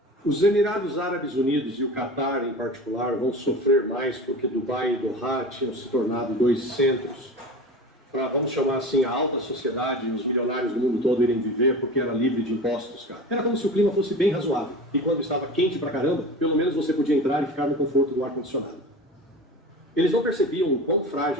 Os Emirados Árabes Unidos e o Catar, em particular, vão sofrer mais porque Dubai e Doha tinham se tornado dois centros para, vamos chamar assim, a alta sociedade e os milionários do mundo todo irem viver porque era livre de impostos, cara. Era como se o clima fosse bem razoável. E quando estava quente pra caramba, pelo menos você podia entrar e ficar no conforto do ar-condicionado. Eles não percebiam o quão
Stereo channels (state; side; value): normal; both; correlation 0.33